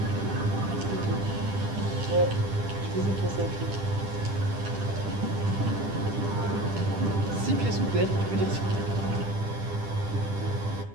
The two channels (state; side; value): late; left; 10 ms